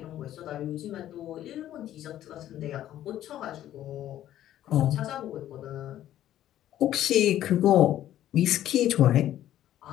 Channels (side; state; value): right; quieter; 12.4 dB